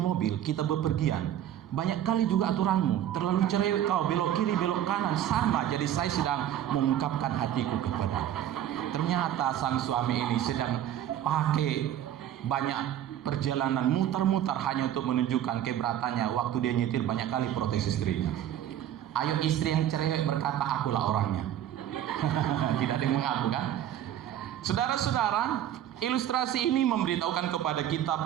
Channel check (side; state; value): left; quieter; 11.2 dB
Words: kita bepergian, banyak kali juga aturanmu, terlalu cerewet kau, belok kiri, belok kanan, sama. Jadi saya sedang mengungkapkan hatiku kepadamu." Ternyata sang suami ini sedang pakai banyak perjalanan mutar-mutar hanya untuk menunjukkan keberatannya. Waktu dia nyetir banyak kali protes istrinya. Ayo istri yang cerewet berkata, "Akulah orangnya." Tidak ada yang mengaku kan? Saudara-saudara, ilustrasi ini memberitahukan kepada kita